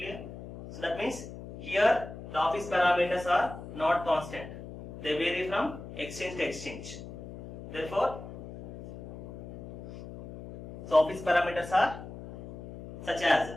So that means here the office parameters are not constant. They vary from exchange to exchange. Therefore, so office parameters are such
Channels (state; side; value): noise; left; hum, 12 dB below the sound